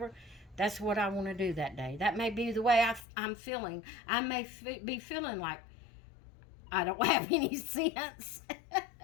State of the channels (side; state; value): right; drops out; at 3.0 s